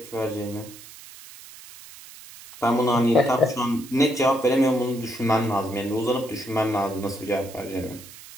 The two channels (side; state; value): right; noise; hiss, 18 dB below the sound